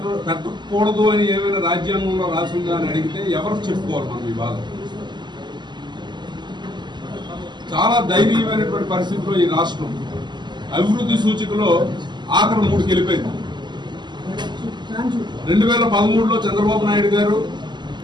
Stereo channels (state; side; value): late; left; 0.21 ms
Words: పెట్టకూడదు అని ఏమైనా రాజ్యాంగంలో రాసిందా అని అడిగితే ఎవరు చెప్పుకోవాలి మనం ఈ బాధ. చాలా దయనీయమైనటువంటి పరిస్థితిలో ఈ రాష్ట్రం అభివృద్ధి సూచికలో ఆఖరి 3కి వెళ్ళిపోయింది. 2013లో చంద్రబాబు నాయుడు గారు